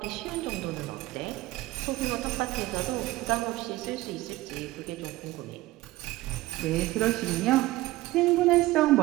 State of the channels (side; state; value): left; quieter; 17.9 dB